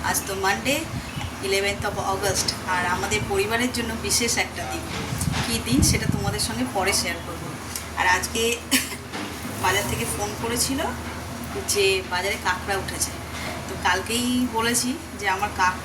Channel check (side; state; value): both; identical; correlation 1.00